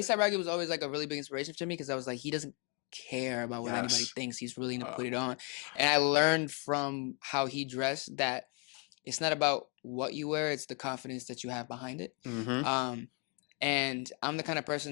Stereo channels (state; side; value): quieter; right; 36.0 dB